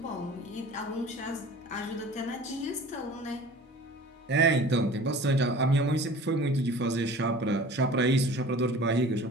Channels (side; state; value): both; normal; correlation 0.43